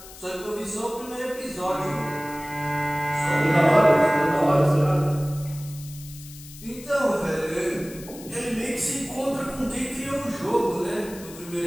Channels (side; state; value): left; noise; hiss, 17 dB below the sound